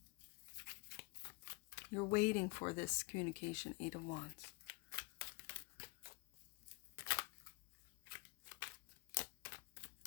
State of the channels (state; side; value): quieter; right; 26.9 dB